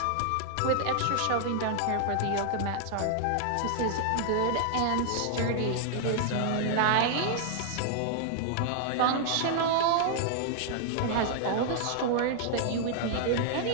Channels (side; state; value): both; different; correlation -0.01